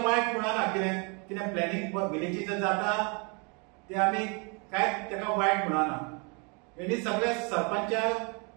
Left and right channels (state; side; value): quieter; left; 33.5 dB